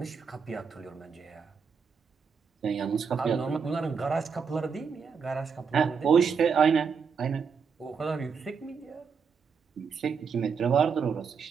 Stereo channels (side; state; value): left; quieter; 6.0 dB